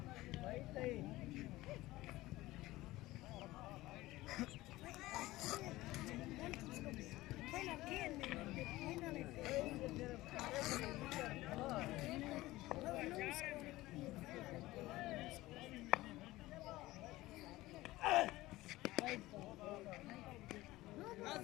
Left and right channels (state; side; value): quieter; right; 18.1 dB